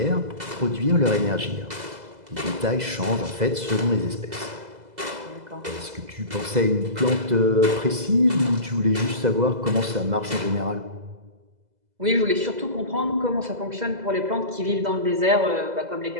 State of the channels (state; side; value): late; left; 2.0 ms